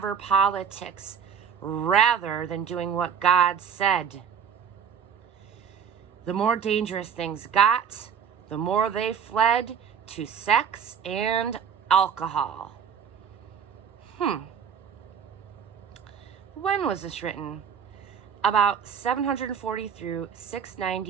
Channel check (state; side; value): quieter; left; 7.3 dB